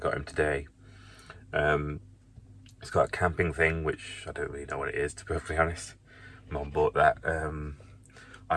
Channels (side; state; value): both; identical; correlation 1.00